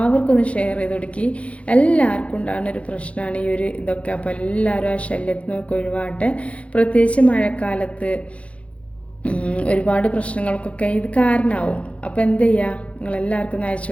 ഒന്ന് ഷെയർ ചെയ്ത് കൊടുക്കി. എല്ലാവർക്കും ഉണ്ടാകുന്ന ഒരു പ്രശ്നമാണ് ഈ ഒരു ഇതൊക്കെ. അപ്പോൾ എല്ലാവരും ആ ശല്യത്തിൽ നിന്നൊക്കെ ഒഴിവാട്ടെ. പ്രത്യേകിച്ച് മഴക്കാലത്ത് ഒരുപാട് പ്രശ്നങ്ങൾക്കൊക്കെ ഇത് കാരണമാവും. അപ്പോൾ എന്ത് ചെയ്യുക, നിങ്ങളെല്ലാവർക്കും ഒന്ന് അയച്ചു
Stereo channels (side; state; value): right; late; 0.063 ms